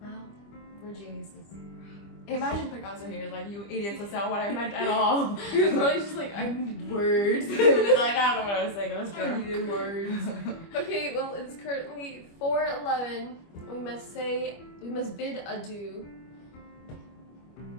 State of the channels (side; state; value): right; late; 25 ms